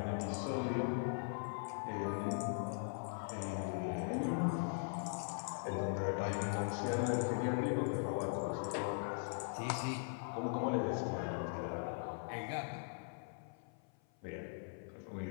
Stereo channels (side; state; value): right; silent; 51 dB below the other